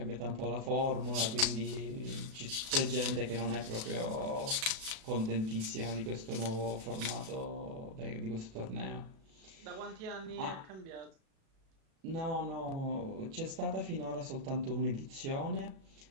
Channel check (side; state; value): left; late; 37 ms